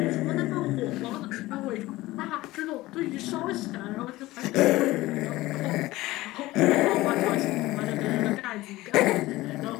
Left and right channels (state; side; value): quieter; right; 18.2 dB